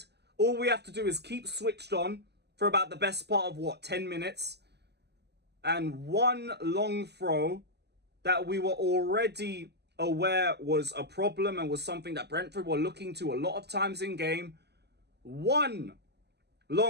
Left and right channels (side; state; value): left; late; 0.49 ms